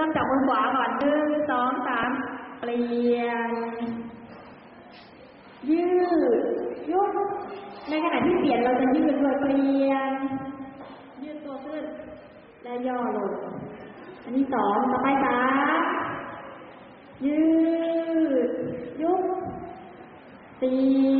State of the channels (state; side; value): identical; both; correlation 1.00